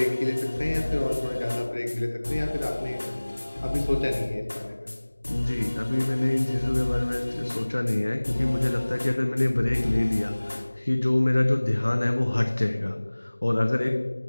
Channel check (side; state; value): both; inverted; correlation -1.00